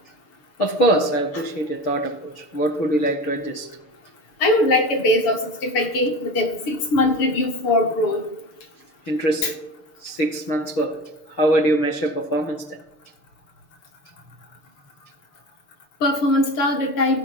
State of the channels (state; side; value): late; right; 6.7 ms